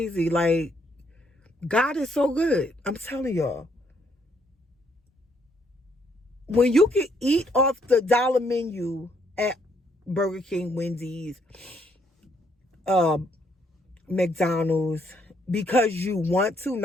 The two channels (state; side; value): normal; both; correlation 0.70